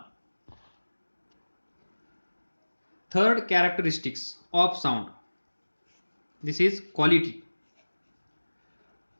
Third characteristics of sound, this is quality.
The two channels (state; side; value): inverted; both; correlation -1.00